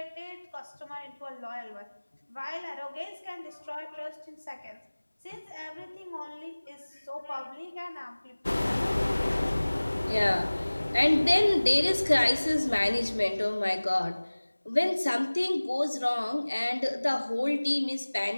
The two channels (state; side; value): inverted; both; correlation -1.00